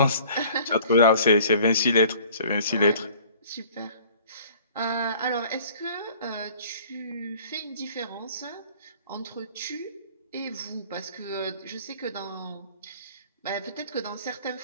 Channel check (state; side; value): inverted; both; correlation -0.50